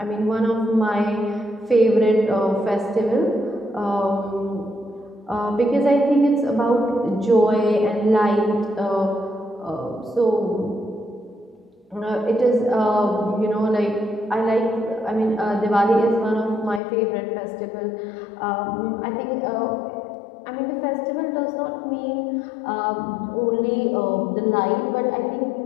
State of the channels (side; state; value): right; drops out; at 16.8 s